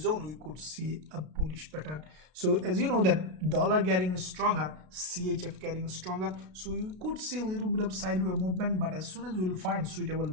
zone. We could see a bullish pattern. So as you know that dollar getting stronger, CHF getting stronger, so you could see a little bit of sideways movement, but as soon as we will find suitable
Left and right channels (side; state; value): left; late; 33 ms